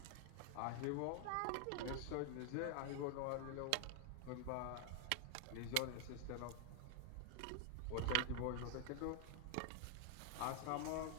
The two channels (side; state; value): both; different; correlation 0.00